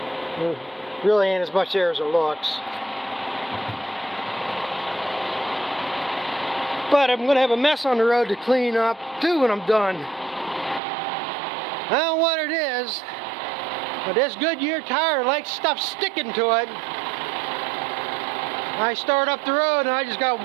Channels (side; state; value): left; drops out; at 10.8 s